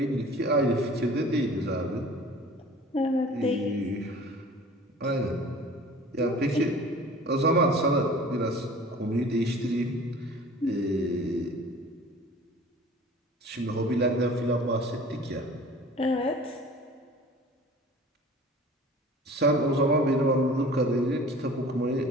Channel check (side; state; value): both; normal; correlation 0.45